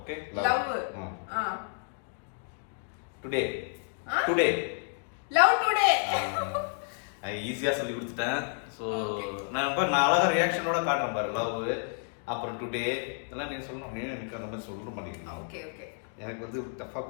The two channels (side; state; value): right; silent; 57 dB below the other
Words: Love today. Today. Love today. ஐ ஈஸியா சொல்லி கொடுத்துட்டேன். சோ நான் அழகா ரியாக்ஷனோட காட்டுறேன் பாரு. லவ் அப்புறம் டுடே இதெல்லாம் நீங்க சொல்லணும். எனக்கு அந்த மாதிரி சொல்ல மாட்டேங்குது. Okay okay. எனக்கு வந்து டஃபா